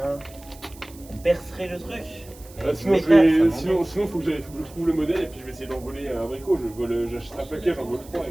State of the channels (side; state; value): right; noise; hiss, 22 dB below the sound